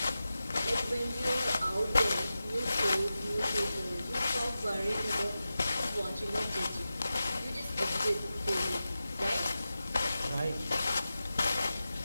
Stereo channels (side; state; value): both; inverted; correlation -0.93